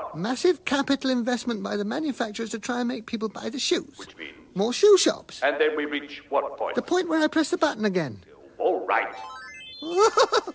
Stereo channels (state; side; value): identical; both; correlation 1.00